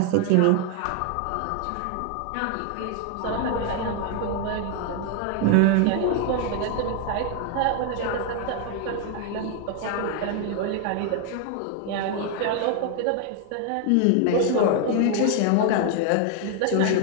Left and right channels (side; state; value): both; different; correlation 0.00